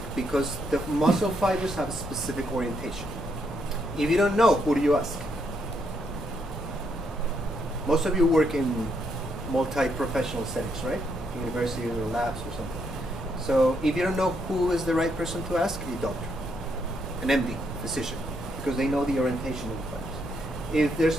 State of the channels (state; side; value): normal; both; correlation 0.76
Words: because the muscle fibers have a specific orientation. If you don't know, who do you ask? Most of you work in multi-professional settings, right? University or labs or something. So if you don't know who is the right person to ask, a doctor, an MD, physician, because they know the orientation of the fibers. If there's